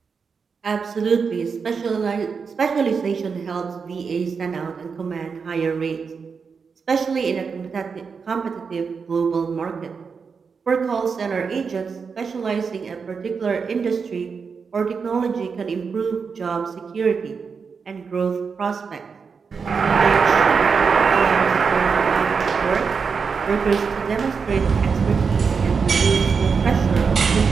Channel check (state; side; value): quieter; left; 5.6 dB